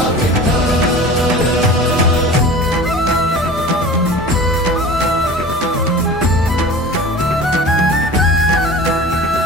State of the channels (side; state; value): both; normal; correlation 0.38